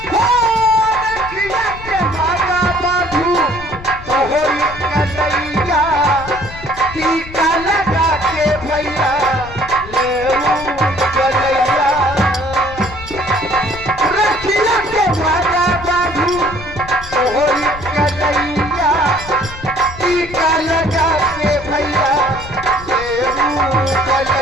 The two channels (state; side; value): noise; left; rumble, 14 dB below the sound